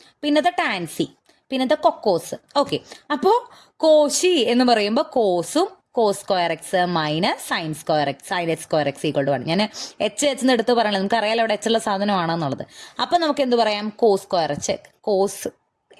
പിന്നത്തെ ടാൻസി, പിന്നത്തെ കൊക്കോസ്. ഓക്കെ, അപ്പോൾ കോശി എന്ന് പറയുമ്പോൾ കോസും cos square x minus sine square x sine h square x equal to 1. ഞാൻ എച്ച് എന്ന് എടുത്ത് പറയണത് നമുക്ക് അറിയാലോ അവിടെ എച്ച് ഉള്ള സാധനമാണെന്നുള്ളത്. അപ്പം നമുക്ക് എന്ത് പറയാം, cos square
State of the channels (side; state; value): both; identical; correlation 1.00